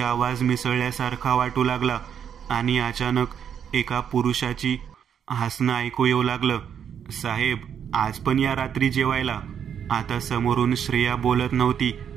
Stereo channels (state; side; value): quieter; left; 8.3 dB